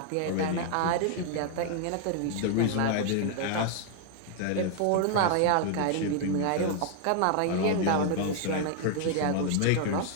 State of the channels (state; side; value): different; both; correlation 0.00